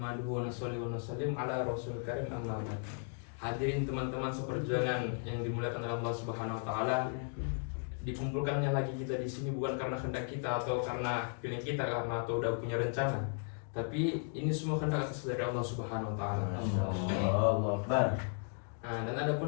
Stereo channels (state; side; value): silent; right; 54 dB below the other